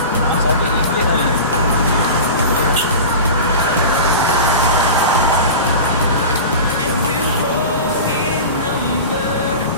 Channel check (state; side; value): inverted; both; correlation -0.31